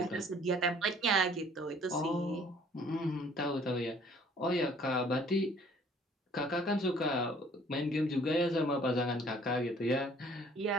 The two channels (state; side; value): normal; both; correlation 0.56